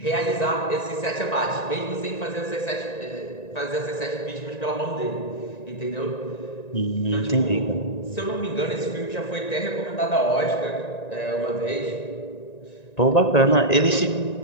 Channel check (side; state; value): right; late; 1.9 ms